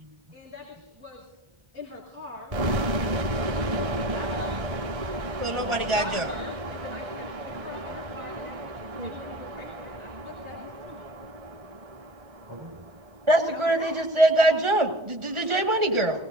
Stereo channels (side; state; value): left; late; 1.4 ms